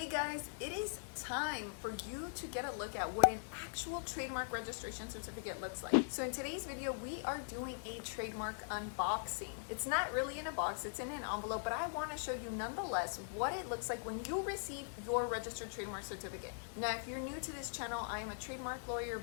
guys, it is time for you to get a look at what an actual trademark registration certificate looks like. So in today's video, we are doing a trademark unboxing. It's not really in a box, it's in an envelope, but I want to show you nonetheless what it looks like when you receive your registered trademark certificate. Now, if you're new to this channel, I am a trademark lawyer,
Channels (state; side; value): silent; right; digital silence